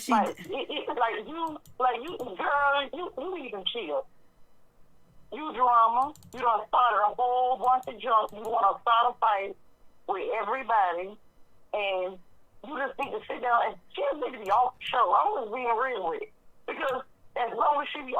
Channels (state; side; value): identical; both; correlation 1.00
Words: she did. Girl, you need to chill. You drama. You done started a whole bunch of junk. You want to start a fight with everybody, and you just need to sit down and she just need to be off the show. I'm just being real with it. Because as long as she be